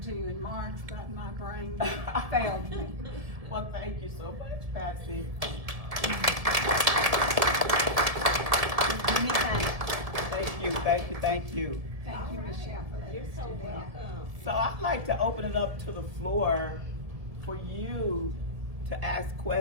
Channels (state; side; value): late; left; 1.9 ms